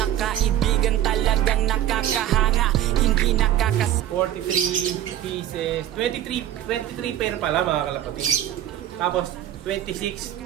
kaibigan talagang nakakahanga. Hindi nakakas... 43 pieces. 23 pair pala mga kalapatid. Tapos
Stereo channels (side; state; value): left; quieter; 11.7 dB